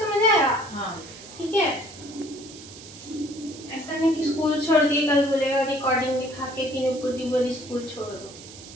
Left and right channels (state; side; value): noise; right; hiss, 17 dB below the sound